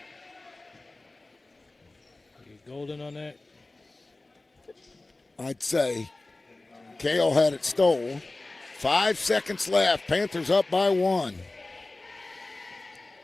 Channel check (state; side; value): quieter; right; 3.0 dB